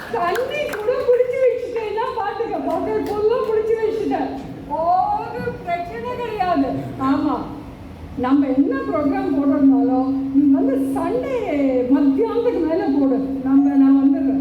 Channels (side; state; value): both; identical; correlation 1.00